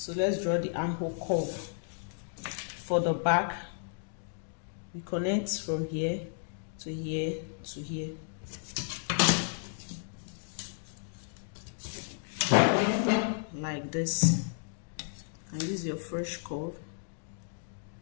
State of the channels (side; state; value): right; silent; digital silence